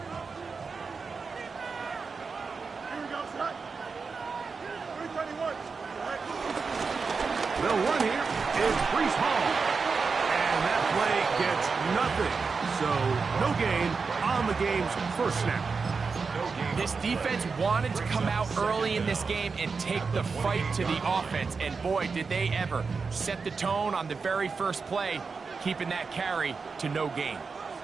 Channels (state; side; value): quieter; left; 4.9 dB